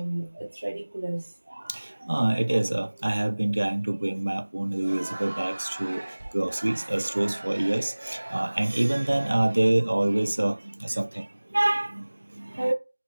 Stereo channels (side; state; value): both; inverted; correlation -1.00